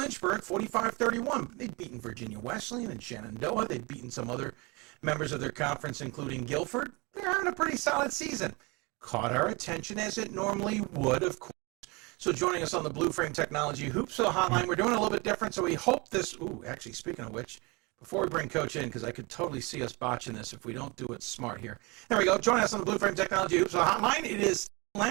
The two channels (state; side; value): quieter; left; 27.2 dB